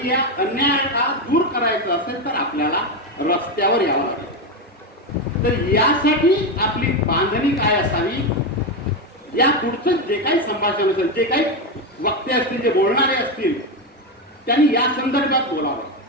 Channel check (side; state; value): both; normal; correlation 0.11